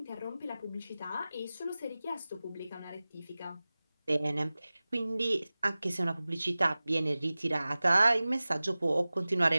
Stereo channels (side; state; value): both; inverted; correlation -0.98